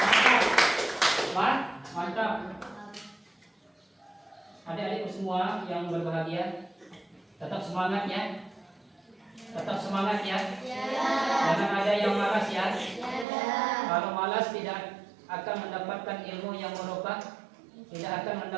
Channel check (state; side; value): drops out; left; at 13.2 s